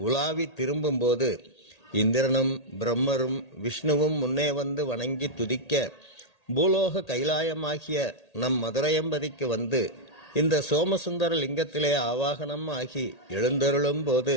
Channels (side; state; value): right; late; 1.8 ms